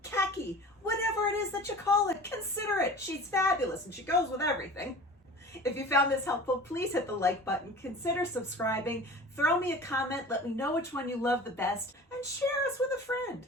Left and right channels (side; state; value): both; normal; correlation 0.39